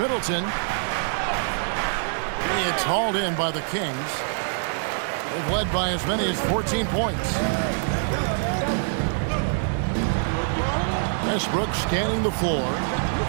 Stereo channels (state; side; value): silent; left; 56 dB below the other